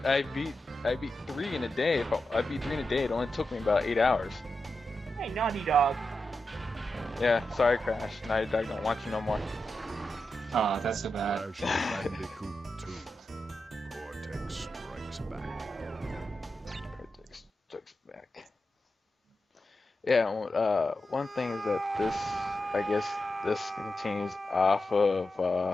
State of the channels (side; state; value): both; normal; correlation 0.89